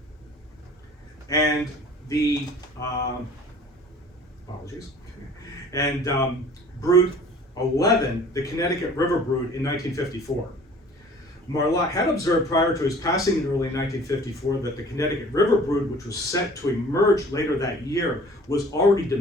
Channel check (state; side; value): normal; both; correlation 0.48